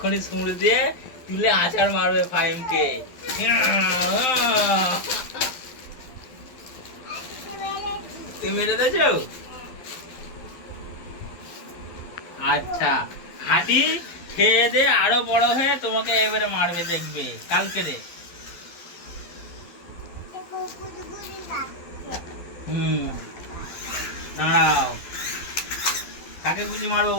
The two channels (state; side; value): late; right; 12 ms